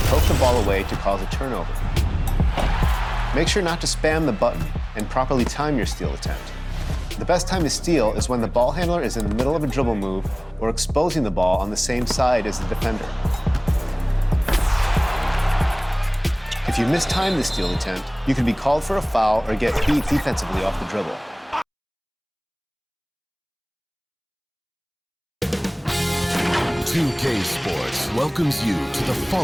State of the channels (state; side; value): identical; both; correlation 1.00